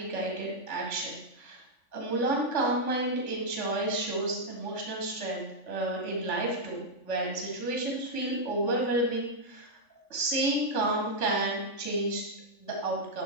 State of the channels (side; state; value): right; late; 3.5 ms